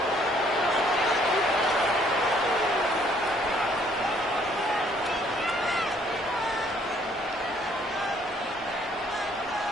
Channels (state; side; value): normal; both; correlation 0.63